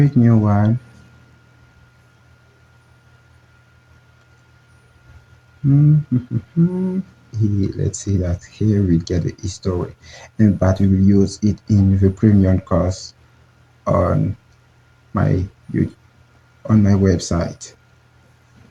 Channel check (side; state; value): both; identical; correlation 1.00